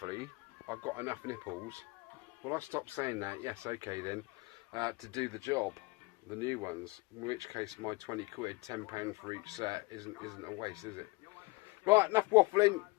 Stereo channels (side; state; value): right; quieter; 24.1 dB